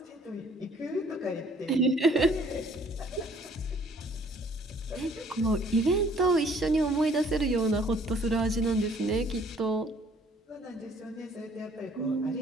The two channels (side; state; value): both; normal; correlation 0.58